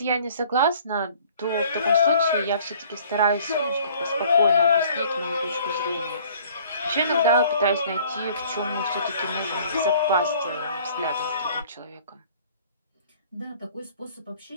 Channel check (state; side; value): inverted; both; correlation -0.53